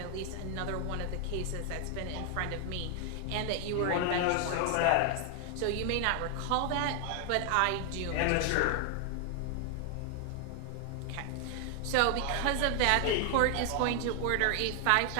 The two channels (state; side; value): different; both; correlation 0.00